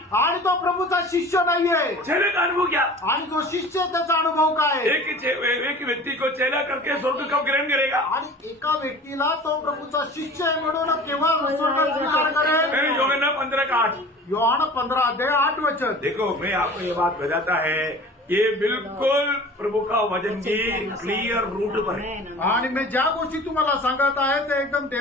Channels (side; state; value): both; normal; correlation 0.41